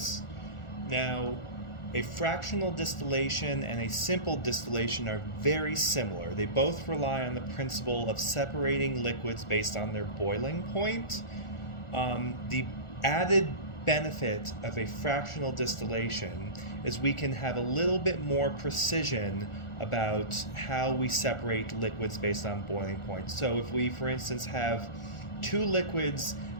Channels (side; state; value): right; late; 1.4 ms